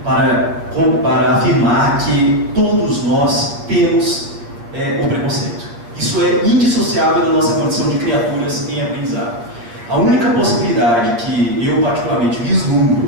para afirmar que todos nós temos o preconceito. Isso é indissociável da nossa condição de criaturas em aprendizado. A única possibilidade que eu particularmente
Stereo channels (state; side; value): late; left; 8.8 ms